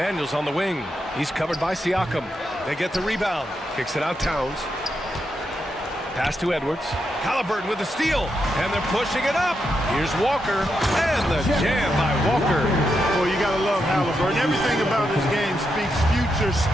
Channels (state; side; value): normal; both; correlation 0.84